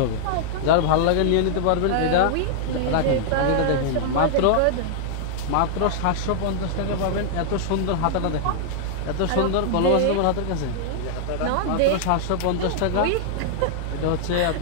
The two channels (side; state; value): both; different; correlation -0.01